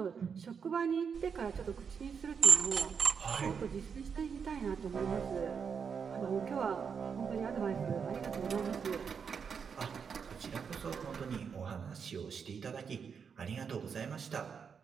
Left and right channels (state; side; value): quieter; left; 6.5 dB